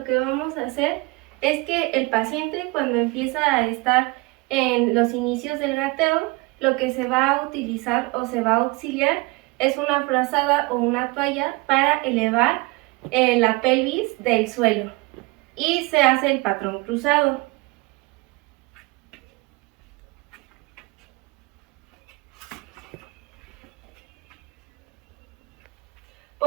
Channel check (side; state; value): left; quieter; 24.7 dB